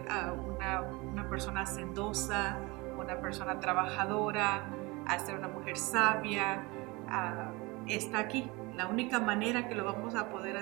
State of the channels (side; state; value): left; quieter; 24.3 dB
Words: una persona hacendosa, una persona trabajadora, a ser una mujer sabia, está aquí. La única manera que lo vamos a poder